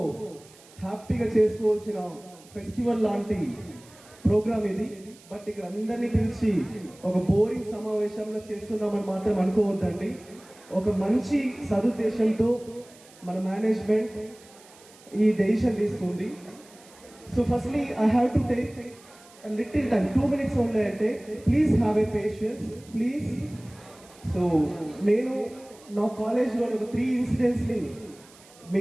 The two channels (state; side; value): noise; right; hiss, 24 dB below the sound